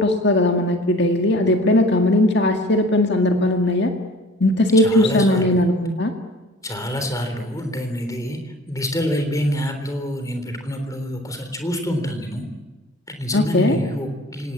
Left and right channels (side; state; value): both; normal; correlation 0.46